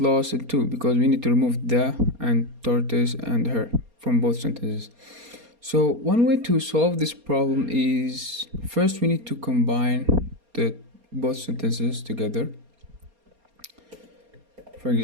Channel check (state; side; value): late; left; 4.3 ms